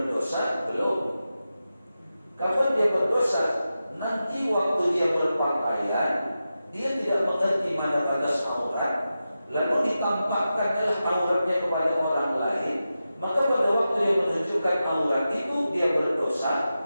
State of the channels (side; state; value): both; inverted; correlation -0.92